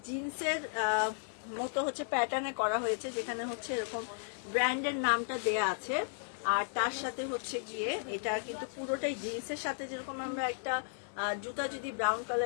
জিন্সের মতো হচ্ছে প্যাটার্নে করা হয়েছে, যেখানে হচ্ছে এরকম ব্র্যান্ডের নামটা দেয়া আছে। আর তার সাথে হচ্ছে গিয়ে এটা কিন্তু পুরোটাই জিন্সের সাথে, যেরকম আমরা একটা জুতা যদি ব্রাউন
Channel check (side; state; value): right; silent; digital silence